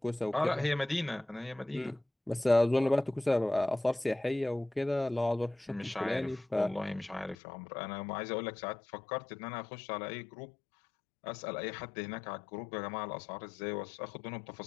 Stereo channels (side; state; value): right; drops out; at 7.4 s